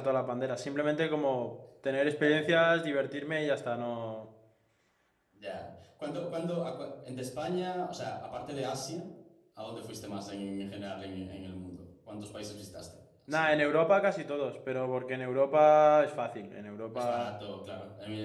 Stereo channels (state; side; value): identical; both; correlation 1.00